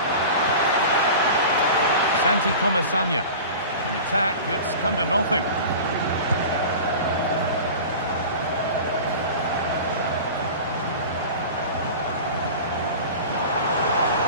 Santi Comesaña, an attack that's come to nothing.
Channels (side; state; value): both; inverted; correlation -0.35